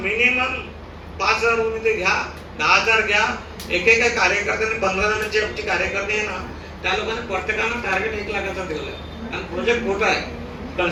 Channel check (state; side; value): identical; both; correlation 1.00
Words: 5,000 रुपये ते घ्या, 10,000 घ्या. एकेका कार्यकर्त्यांनी 15 जणांची आमची कार्यकर्ते आहे ना, त्या लोकांनी प्रत्येकानं टार्गेट 1 लाखाचं दिलं. आणि प्रोजेक्ट मोठा आहे.